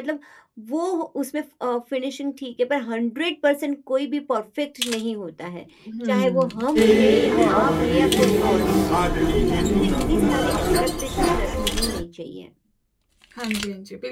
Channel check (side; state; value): both; identical; correlation 1.00